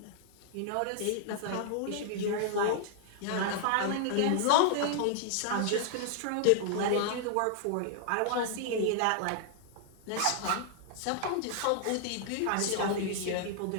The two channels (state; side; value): different; both; correlation -0.01